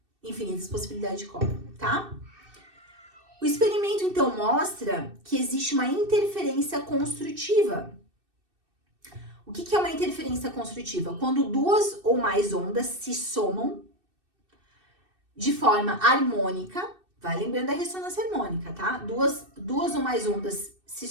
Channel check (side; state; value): left; late; 2.6 ms